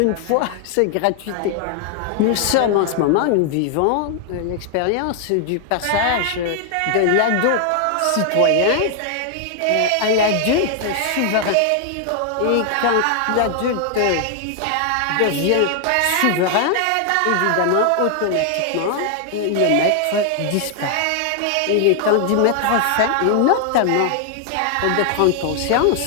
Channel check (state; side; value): different; both; correlation 0.00